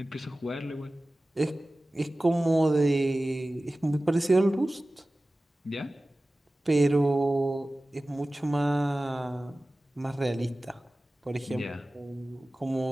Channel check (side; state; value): both; normal; correlation 0.97